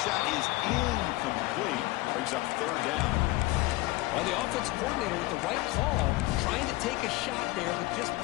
is incomplete. Brings up 3rd down. Well, the offense coordinator with the right call, trying to take a shot there, but just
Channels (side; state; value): right; quieter; 19.6 dB